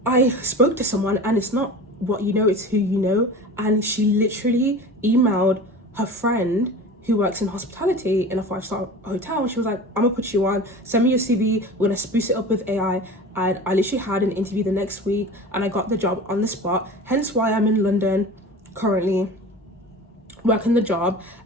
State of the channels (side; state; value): both; normal; correlation 0.36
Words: I spoke to someone, and it's not what you know, it's who you know. And she literally emailed her friend who works in hospitality in a 5-star hotel. And she was like, I'm gonna put you on, send me your CV, we're gonna spruce it up with AI. And I literally had an interview the next week and I got the job on the spot. Hence why I'm in London currently working the job.